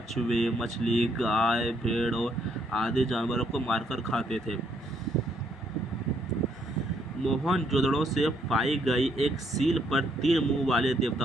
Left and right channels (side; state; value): both; normal; correlation 0.71